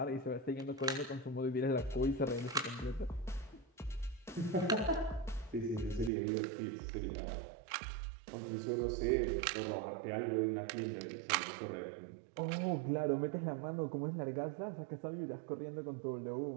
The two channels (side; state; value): left; drops out; at 6.1 s